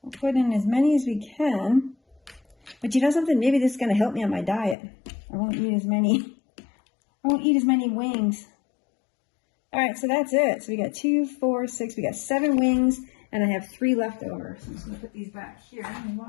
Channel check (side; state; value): right; drops out; at 4.8 s